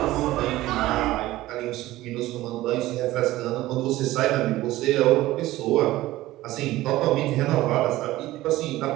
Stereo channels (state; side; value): quieter; left; 16.7 dB